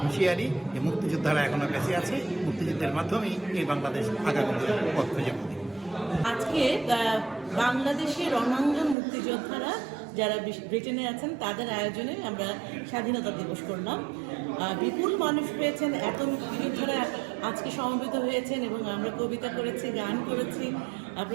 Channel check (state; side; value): drops out; left; at 9.0 s